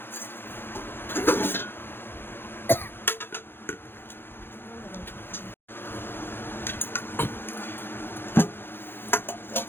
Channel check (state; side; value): late; right; 0.10 ms